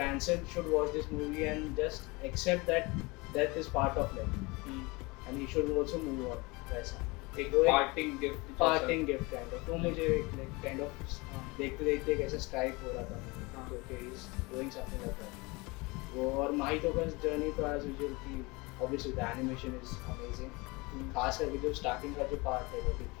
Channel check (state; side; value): quieter; right; 25.2 dB